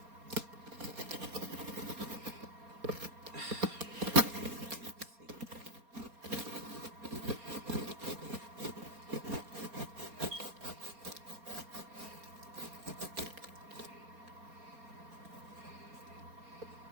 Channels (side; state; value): left; late; 4.3 ms